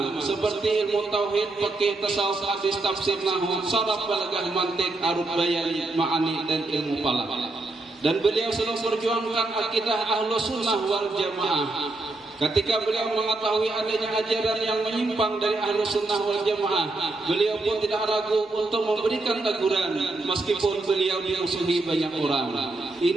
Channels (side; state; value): left; quieter; 3.0 dB